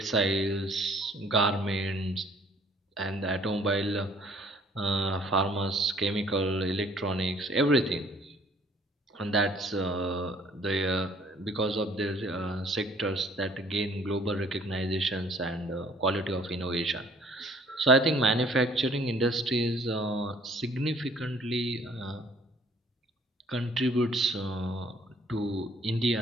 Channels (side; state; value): both; normal; correlation 0.58